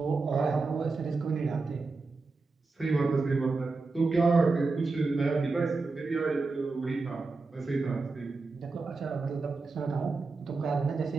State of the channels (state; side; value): quieter; left; 3.9 dB